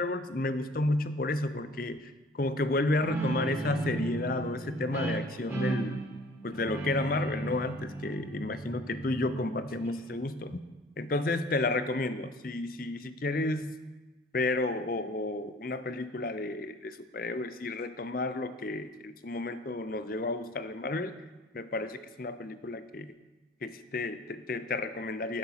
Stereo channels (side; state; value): both; normal; correlation 0.51